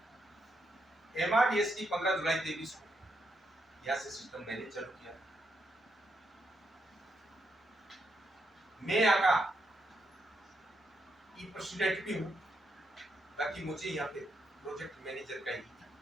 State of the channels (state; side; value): normal; both; correlation 0.80